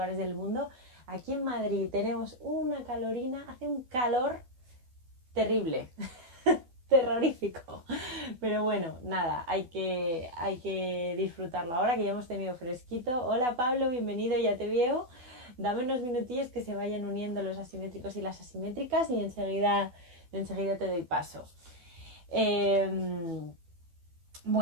del mundo. Aquí en Madrid tenemos una calorina, hace un calor terrible, terrorífico. Pero bueno, nada, hay que disfrutarlo ahora que ya hemos tenido fresquito. Hola Pablo, bienvenido, ya te veo. Dame unos minutillos que se vayan uniendo los asimétricos y las asimétricas y enseguida te doy paso.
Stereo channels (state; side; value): late; left; 12 ms